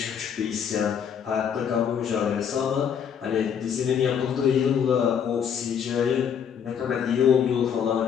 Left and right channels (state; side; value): quieter; right; 7.9 dB